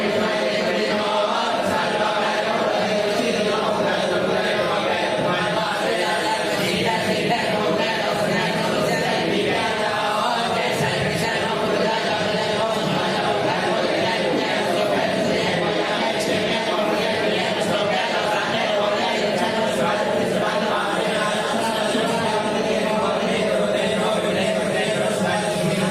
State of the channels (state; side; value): identical; both; correlation 1.00